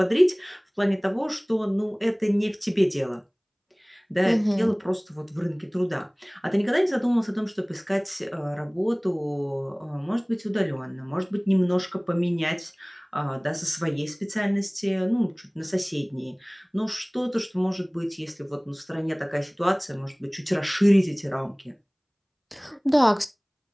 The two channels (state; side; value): identical; both; correlation 1.00